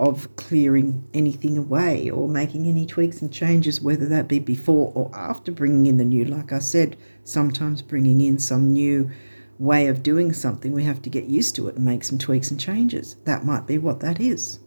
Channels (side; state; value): both; inverted; correlation -1.00